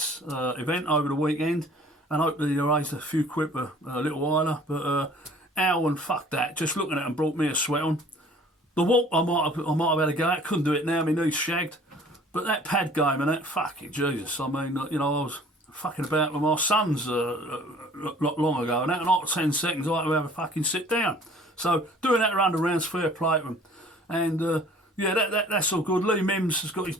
event over the weekend, and hopefully they raised a few quid for little while. But Al, and fuck that, just looking at them brought me a sweat on. The walk I might have had a go at, couldn't do it now, my knee's shagged. But that pad game and that, fucking Jesus, I mean, I was fucking about with my sons long ago, and that, not 10 seconds, I had to have a fucking sit down. So doing that around the rounds, fair play to them. And, yeah, that's all good. Lee Mims has got his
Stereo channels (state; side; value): normal; both; correlation 0.52